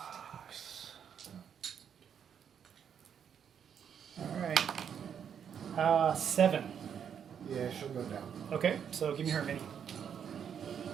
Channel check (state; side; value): quieter; left; 8.1 dB